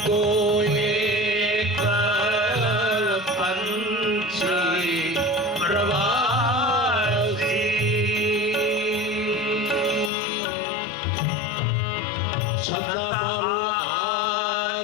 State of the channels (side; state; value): right; drops out; at 10.1 s